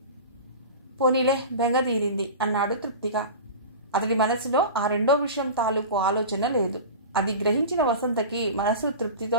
పోనీలే, బెంగదీరింది అన్నాడు తృప్తిగా. అతడి మనసులో ఆ రెండో విషయం తాలూకు ఆలోచన లేదు. అది గ్రహించిన వసంతకి మనసు తృప్తితో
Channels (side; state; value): both; inverted; correlation -0.32